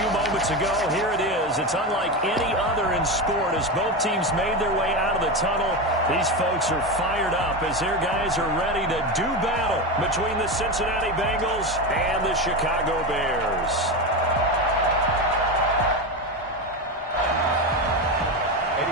moments ago, here it is. It's unlike any other in sport as both teams made their way out of the tunnel. These folks are fired up as their guys are ready to do battle between the Cincinnati Bengals and the Chicago Bears.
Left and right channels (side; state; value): both; normal; correlation 0.17